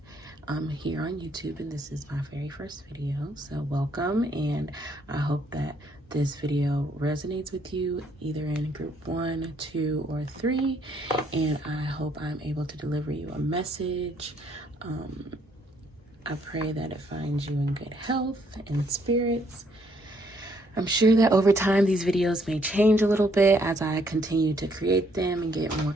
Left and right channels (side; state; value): both; normal; correlation 0.69